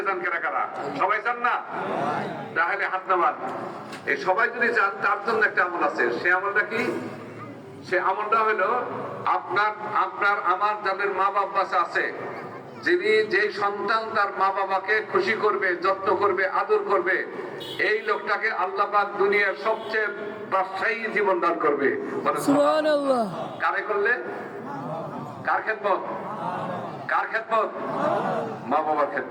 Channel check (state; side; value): identical; both; correlation 1.00